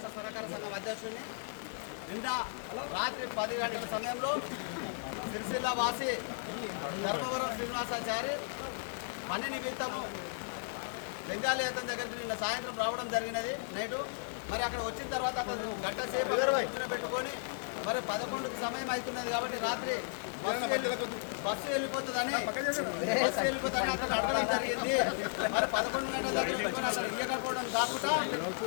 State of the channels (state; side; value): silent; right; 55 dB below the other